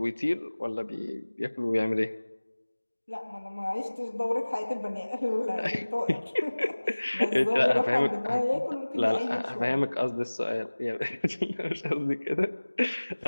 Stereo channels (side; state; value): both; inverted; correlation -1.00